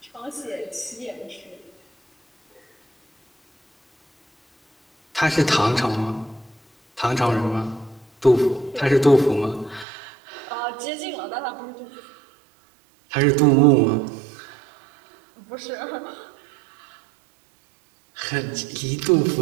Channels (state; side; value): drops out; left; at 9.9 s